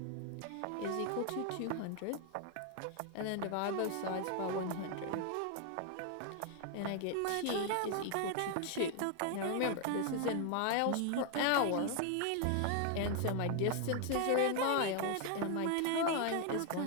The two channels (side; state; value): both; different; correlation 0.00